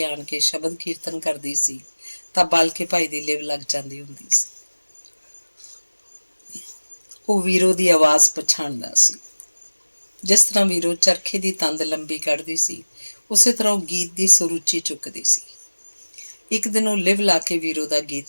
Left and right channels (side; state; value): both; inverted; correlation -1.00